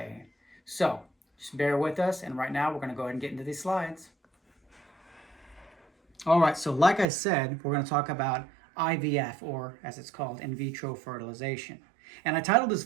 So just bear with us, and right now we're going to go ahead and get into these slides. All right, so like I said, we're going to talk about IVF, or as it's called, in vitro fertilization. And I titled this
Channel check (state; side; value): drops out; left; at 7.1 s